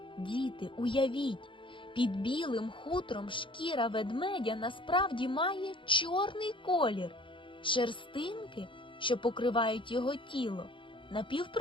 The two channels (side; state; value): right; late; 0.24 ms